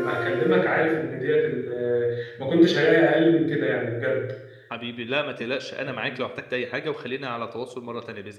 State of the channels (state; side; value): identical; both; correlation 1.00